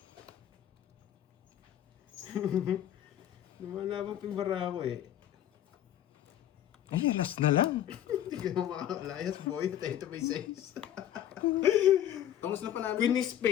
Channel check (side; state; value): right; quieter; 11.3 dB